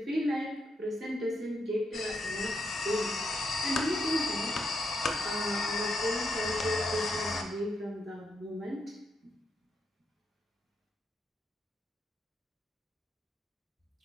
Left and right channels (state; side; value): normal; both; correlation 0.79